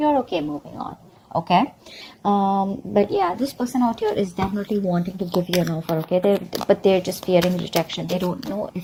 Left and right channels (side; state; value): both; identical; correlation 1.00